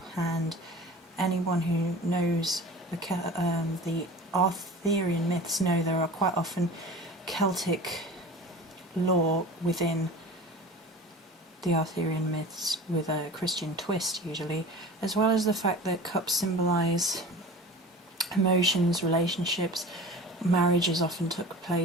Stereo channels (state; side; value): normal; both; correlation 0.37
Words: and anyone who knows the Arthurian myths know there are quite often Celtic lore within the Arthurian myths with a Christian twist usually, as well as the fact that cups symbolise emotions, relationships. Marriages often took